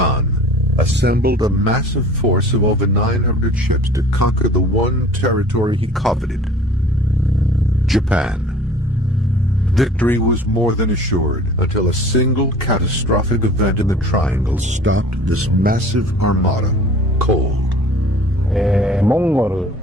assembled a massive force of over 900 ships to conquer the one territory he coveted, Japan. Victory was more than assured until a single catastrophic event in the Triangle stopped this massive armada cold.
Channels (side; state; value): both; normal; correlation 0.47